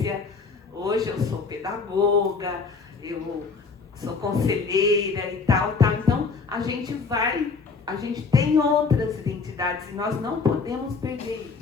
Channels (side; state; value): right; quieter; 4.8 dB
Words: hoje eu sou pedagoga, eu sou conselheira e tal. Então, a gente tem outras identidades e nós não podemos perder